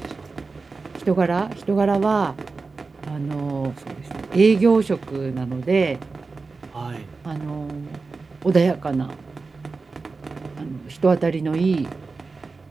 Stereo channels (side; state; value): left; quieter; 4.1 dB